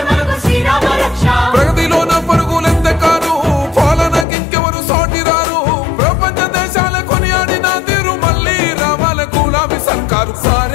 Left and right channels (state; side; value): drops out; right; at 4.2 s